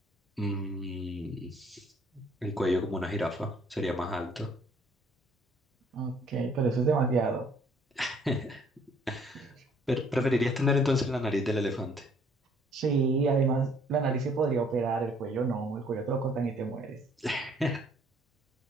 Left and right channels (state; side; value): normal; both; correlation 0.61